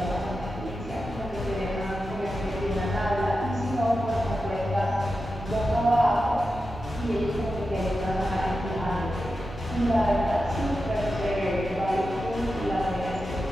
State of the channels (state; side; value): normal; both; correlation 0.91